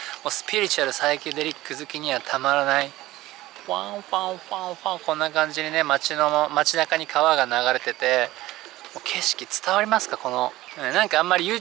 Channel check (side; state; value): left; quieter; 17.0 dB